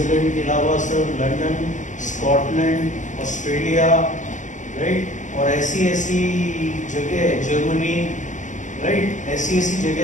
के अलावा sir London, Scotland, Australia, right, और ऐसी जगह जर्मनी, राइट, ऐसी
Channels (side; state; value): right; late; 0.36 ms